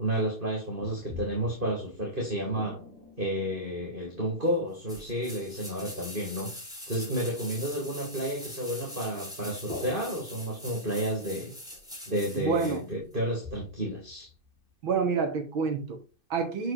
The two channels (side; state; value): left; late; 2.6 ms